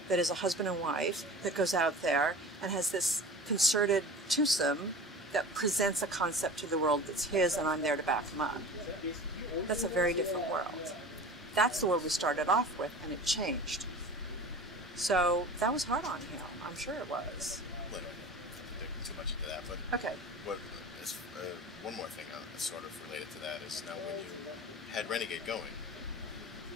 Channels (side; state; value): both; normal; correlation 0.36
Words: that is a husband and wife that goes out there and has this concerted twosome that presents a concept to the world that's his, and I'm there to back him up. That's a very different world. That's the world we started off with, and it changed. So that was hard on him. I'm sure it was. Well, I don't dig too much into that, but Okay. what is, one more thing sort of related to that is now when you had Renegade going,